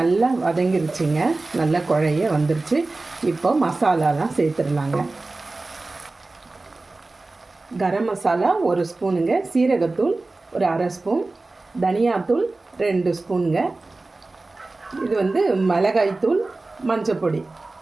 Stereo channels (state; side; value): quieter; left; 3.3 dB